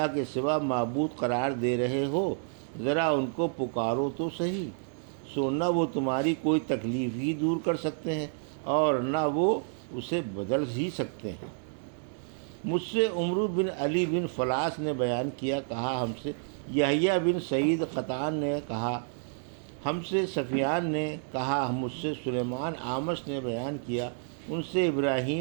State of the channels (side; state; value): left; silent; 58 dB below the other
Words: کے سوا معبود قرار دے رہے ہو، ذرا ان کو پکارو تو صحیح، سو نہ وہ تمہاری کوئی تکلیف ہی دور کر سکتے ہیں، اور نہ وہ اسے بدل ہی سکتے ہیں۔ مجھ سے عمرو بن علی بن فلاس نے بیان کیا، کہا ہم سے یحییٰ بن سعید قطان نے کہا، ہم سے سفیان نے کہا، مجھ سے سلیمان اعمش نے بیان کیا، ان سے